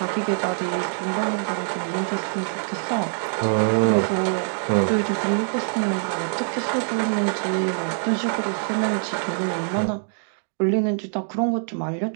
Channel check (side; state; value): left; silent; digital silence